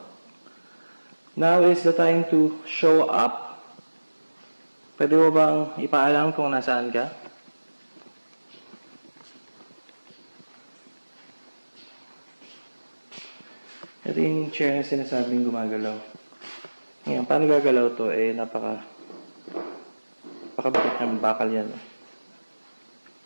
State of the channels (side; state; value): both; inverted; correlation -1.00